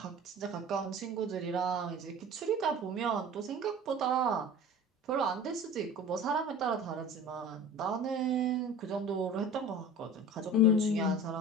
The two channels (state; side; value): normal; both; correlation 0.38